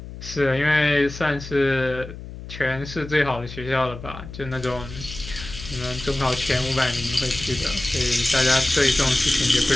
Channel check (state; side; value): noise; left; hum, 12 dB below the sound